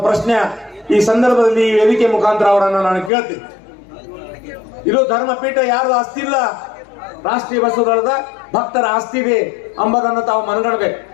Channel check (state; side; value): drops out; right; at 3.1 s